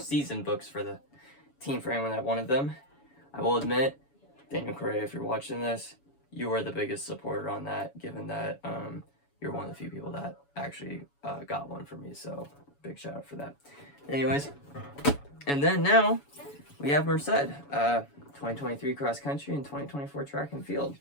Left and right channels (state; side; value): late; right; 7.1 ms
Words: books for the team, for anyone that wanted them. I will admit, Daniel Correa, if you're watching this, you are the biggest supporter on that, given that you're one of the few people that actually got one for me. So big shout out for that. Anyways, and then now we have Merced, 2023 cross country and 2024 track and field.